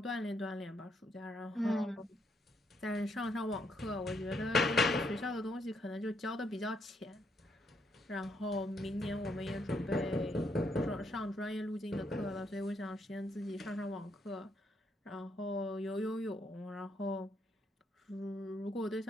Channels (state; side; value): normal; both; correlation 0.74